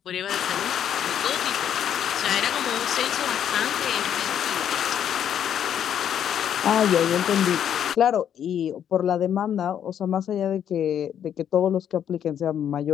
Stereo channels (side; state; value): right; quieter; 9.4 dB